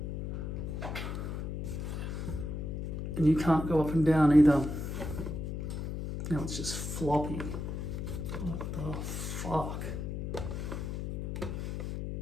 you can't go up and down either. Now it's just floppy. What the fuck?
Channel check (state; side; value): noise; left; hum, 4 dB below the sound